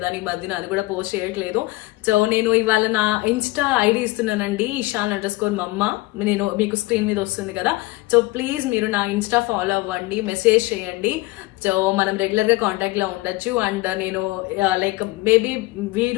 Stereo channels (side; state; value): right; quieter; 20.6 dB